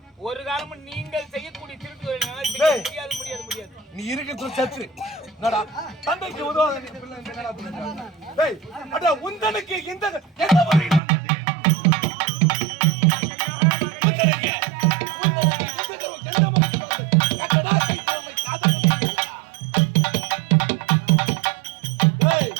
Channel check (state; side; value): drops out; left; at 11.0 s